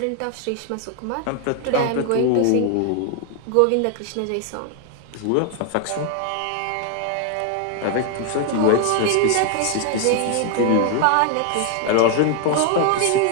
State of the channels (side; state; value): both; different; correlation 0.00